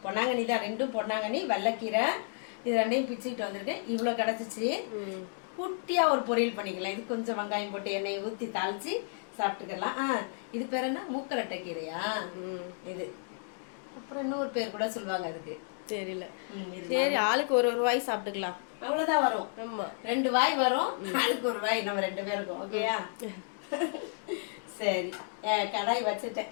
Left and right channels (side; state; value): right; silent; digital silence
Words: பொன்னாங்கண்ணி தான். ரெண்டும் பொன்னாங்கண்ணி வல்லக்கீரை. இது ரெண்டையும் பிச்சுக்கிட்டு வந்துருக்கேன். இவ்வளோ கிடச்சிச்சு. குட்டியாக ஒரு பொரியல் பண்ணிக்கலாம். இது கொஞ்சம் வெங்காயம் போட்டு எண்ணெயை ஊற்றி தாளித்து சாப்பிட்டுக்கலாம். இது பேர் என்ன, மூக்கரட்டை கீரையா இது? அப்புறம் இன்னொரு பேர் கூட சொல்லுவாங்க அதுக்கு, தெரியல. சரி, ஆளுக்கு ஒரு வாய் சாப்பிட்டுக்கலாம். அவ்வளோதான் வரும். ஆமாம், 2 வாய் வரும். ஆளுக்கு ஒரு வாய். நம்ம 2 பேருக்கும். ஓகேயா? சரி, கடாய் வச்சுட்டேன்.